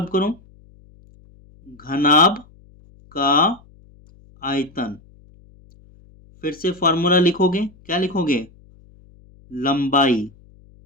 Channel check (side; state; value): left; noise; hum, 27 dB below the sound